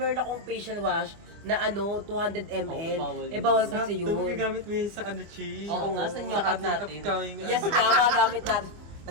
akong facial wash na ano, 200 ml. Oo, bawal Eh yun. bawal kasi Ito, yun. gagamit mo yun sa ano, Chi? Oo nga, sa nyokap ating natin. upcoming, Yes, tama, gamit natin.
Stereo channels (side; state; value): left; late; 24 ms